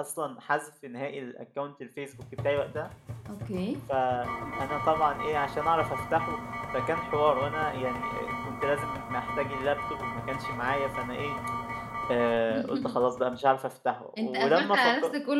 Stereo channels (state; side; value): identical; both; correlation 1.00